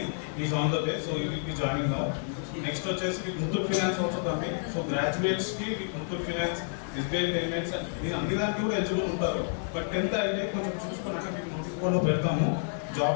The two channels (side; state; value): right; silent; digital silence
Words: is on the way. So you will B joining now. Next వచ్చేసి మీకు Muthoot finance also coming. So గ్రాడ్యుయేట్స్కి మీకు ముత్తూట్ ఫైనాన్స్, ఎస్బీఐ పేమెంట్స్ మీరు అన్ని దానికి కూడా ఎలిజిబుల్ ఉంటారు. బట్ 10th అయితే కొంచెం చూసుకున్నాక మీకు నోటీస్ బోర్డులో పెడతాము,